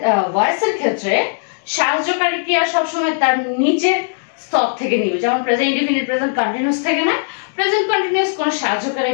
ভয়েসের ক্ষেত্রে সাহায্যকারী ক্রিয়া সবসময় তার নিচের স্তর থেকে নিবে। যেমন প্রেজেন্ট ইনডিফিনিট প্রেজেন্ট কন্টিনিউয়াস থেকে নেয়, প্রেজেন্ট কন্টিনিউয়াস কোন সাহায্যকারী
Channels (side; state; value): right; silent; digital silence